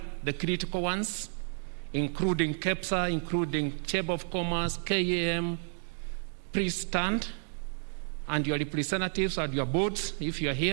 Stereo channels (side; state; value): left; silent; 57 dB below the other